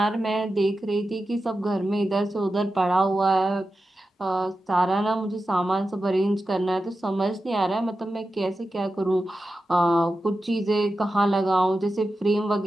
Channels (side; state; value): both; normal; correlation 0.92